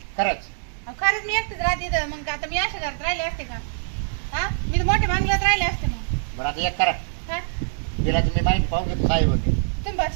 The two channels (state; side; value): silent; left; digital silence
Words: खरंच अहो, खरंच मी एकटीच राहते इथं. मग आता मी अशा घरात राहिले असते का? हा मी तर मोठ्या बांगल्यात राहिले असते. मग बरं आता एक करा काय तिला तुम्ही माहिती पाहून घेतो काय होते तुम्ही